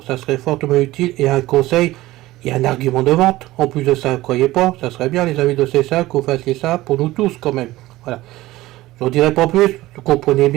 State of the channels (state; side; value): quieter; left; 17.4 dB